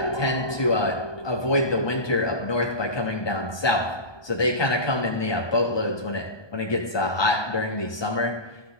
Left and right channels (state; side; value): late; right; 1.2 ms